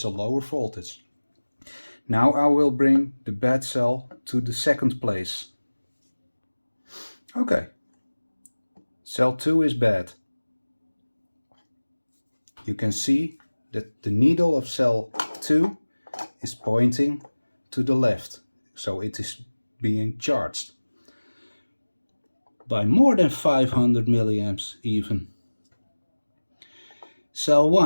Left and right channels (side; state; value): both; inverted; correlation -1.00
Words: a lower voltage. Now I will bring the bad cell to the second place. Okay, cell 2 is bad. you can see that the needle of cell 2 is pointing to the left, so it is being charged by more than 500 milliamps even. Cell